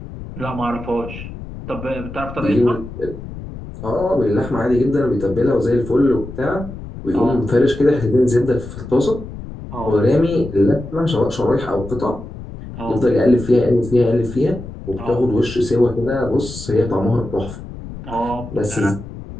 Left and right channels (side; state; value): left; noise; rumble, 12 dB below the sound